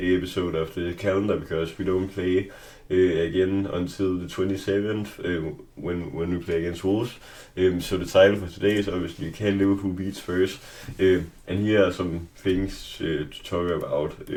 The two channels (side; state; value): both; identical; correlation 1.00